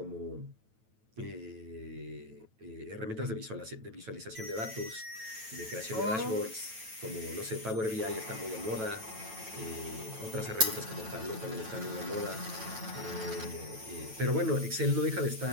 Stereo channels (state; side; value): late; left; 9.1 ms